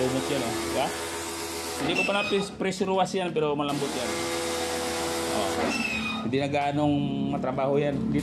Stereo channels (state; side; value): identical; both; correlation 1.00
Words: yan o. Diba? Hindi ko pa na pressure wash yan pero malambot yan. Hindi na gaanong matrabaho yan.